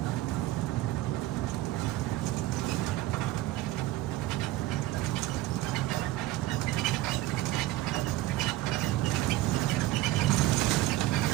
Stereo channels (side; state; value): left; quieter; 16.3 dB